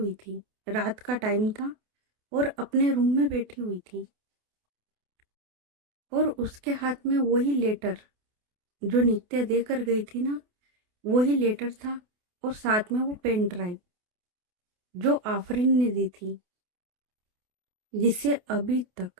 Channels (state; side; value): late; left; 28 ms